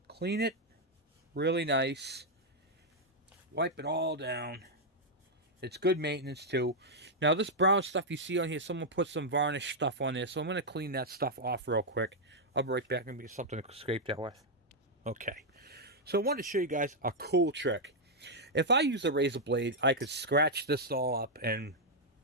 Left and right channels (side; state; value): both; normal; correlation -0.03